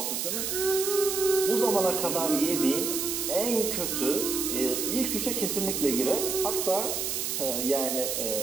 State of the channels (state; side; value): noise; right; hiss, 1 dB below the sound